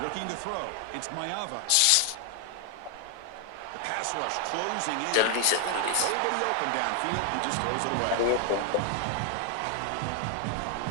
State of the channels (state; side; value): different; both; correlation 0.00